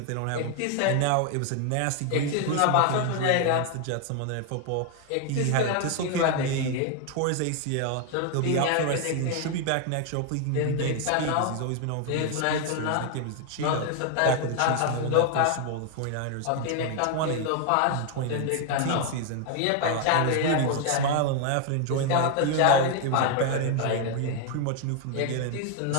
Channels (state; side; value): different; both; correlation 0.00